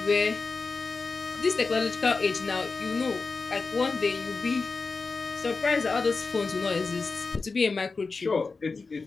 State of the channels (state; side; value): quieter; right; 4.2 dB